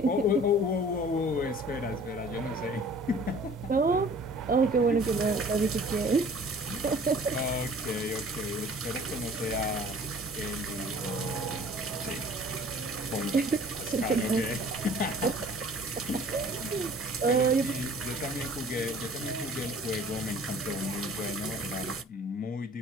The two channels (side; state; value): both; normal; correlation 0.50